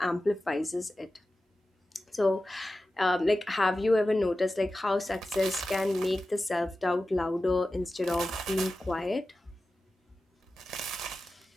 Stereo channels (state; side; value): normal; both; correlation 0.94